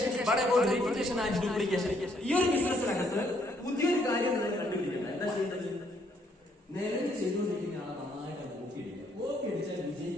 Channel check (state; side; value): normal; both; correlation 0.69